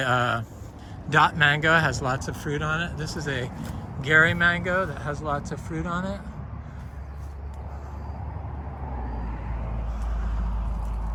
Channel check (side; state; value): both; identical; correlation 1.00